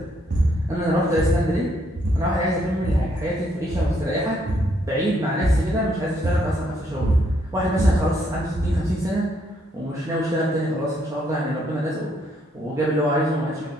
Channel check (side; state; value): both; normal; correlation 0.72